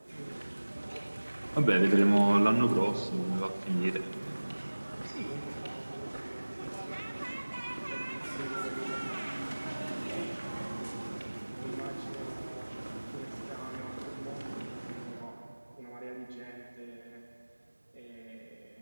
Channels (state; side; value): inverted; both; correlation -1.00